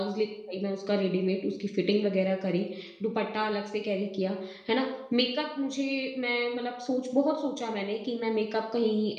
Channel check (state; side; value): identical; both; correlation 1.00